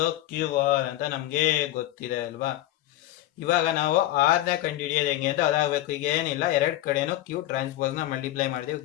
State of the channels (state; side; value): quieter; right; 14.9 dB